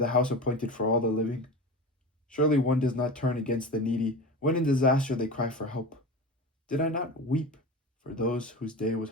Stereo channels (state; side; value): normal; both; correlation 0.28